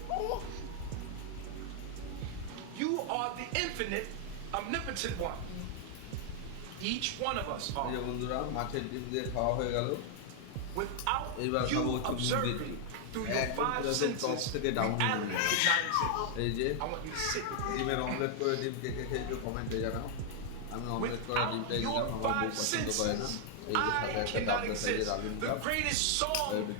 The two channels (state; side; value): different; both; correlation 0.00